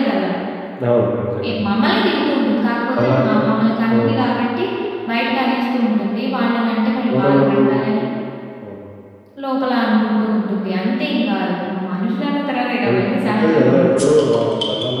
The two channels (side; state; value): both; identical; correlation 1.00